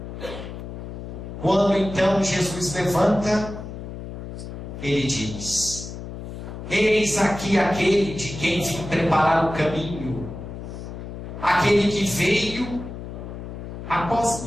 Quando então Jesus levanta, ele diz: eis aqui aquele de quem vim preparar o caminho, aquele que veio após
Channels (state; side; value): noise; left; hum, 9 dB below the sound